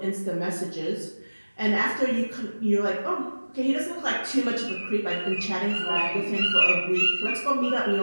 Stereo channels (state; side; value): inverted; both; correlation -1.00